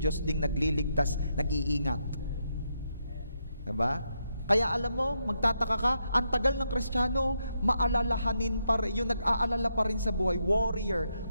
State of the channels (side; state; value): both; inverted; correlation -0.81